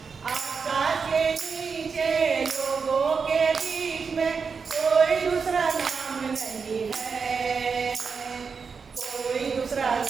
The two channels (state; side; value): quieter; left; 5.5 dB